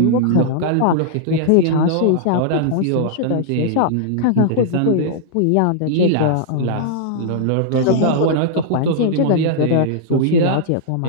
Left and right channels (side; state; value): both; different; correlation -0.01